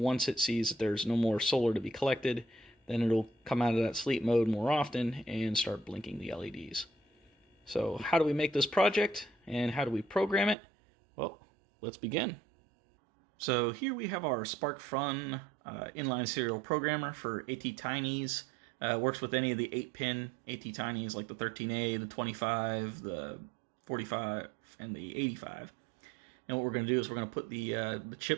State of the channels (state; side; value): drops out; left; at 10.6 s